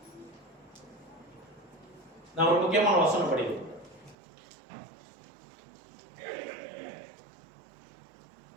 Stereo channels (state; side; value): drops out; left; at 4.2 s